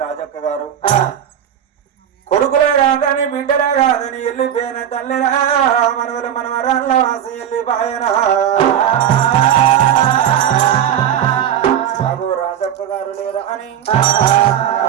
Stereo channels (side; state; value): left; quieter; 9.8 dB